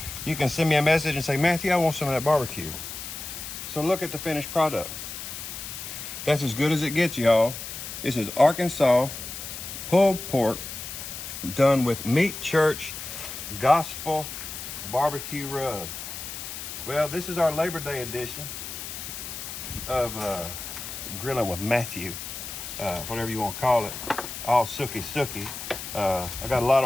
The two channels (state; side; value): noise; left; hiss, 8 dB below the sound